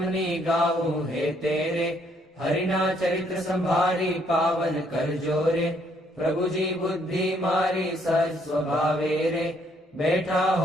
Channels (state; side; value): normal; both; correlation 0.68